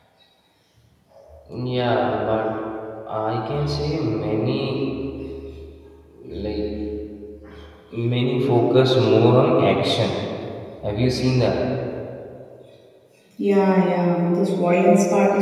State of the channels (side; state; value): both; identical; correlation 1.00